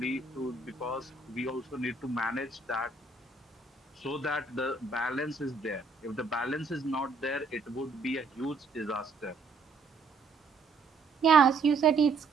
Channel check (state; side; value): quieter; left; 4.0 dB